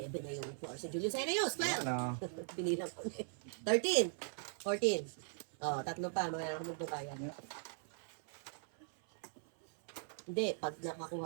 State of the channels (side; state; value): left; silent; 51 dB below the other